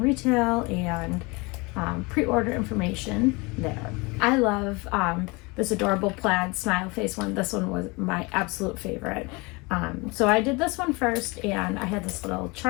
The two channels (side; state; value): right; quieter; 26.4 dB